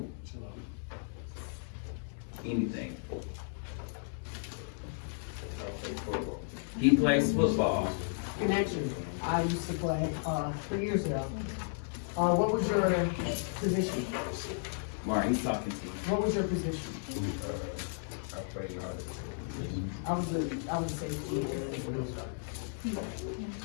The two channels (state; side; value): silent; right; digital silence